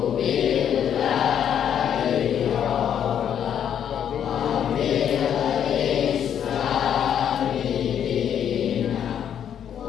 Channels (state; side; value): quieter; right; 9.1 dB